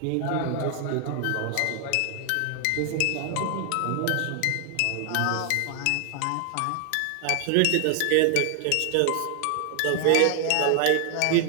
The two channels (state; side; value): different; both; correlation 0.00